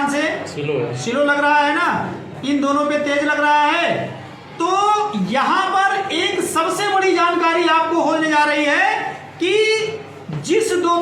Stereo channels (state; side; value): identical; both; correlation 1.00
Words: से, स्लो लग रहा है ना, इन दोनों पे तेज लग रहा है। तो यहां पर एक सबसे बड़ी जानकारी आपको होने जा रही है कि जिस दो